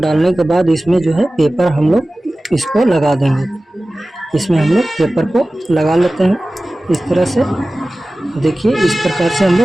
के बाद इसमें जो है पेपर हम लोग इसको लगा देंगे। इसमें हम लोग पेपर को लगा लेते हैं इस तरह से। देखिए इस प्रकार से हम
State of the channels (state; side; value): normal; both; correlation 0.97